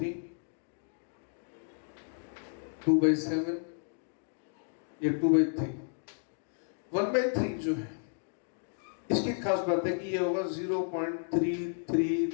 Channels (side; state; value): right; silent; digital silence